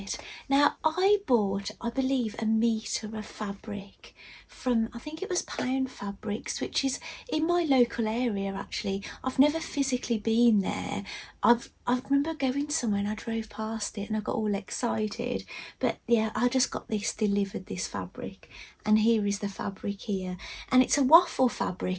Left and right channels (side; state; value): both; identical; correlation 1.00